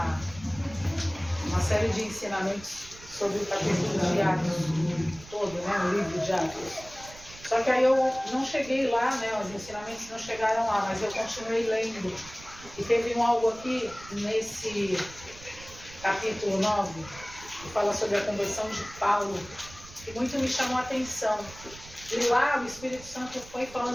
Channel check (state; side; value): noise; right; rumble, 18 dB below the sound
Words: uma série de ensinamentos sobre o capítulo de Atos todo, né? O livro de Atos. Só que aí eu não cheguei lá, né? Os ensinamentos não chegaram lá, mas eu continuei lendo. E teve algo aqui nesse capítulo 9 que fala sobre a conversão de Paulo, que muito me chamou a atenção. E lá o Espírito Santo foi